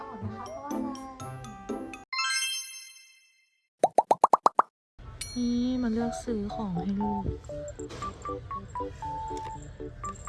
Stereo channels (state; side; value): identical; both; correlation 1.00